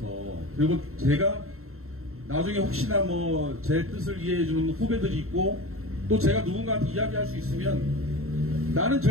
그리고 제가 나중에 혹시나 뭐 제 뜻을 이해해주는 후배들이 있고 또 제가 누군가한테 이야기할 수 있으면 나는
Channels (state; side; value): late; left; 0.62 ms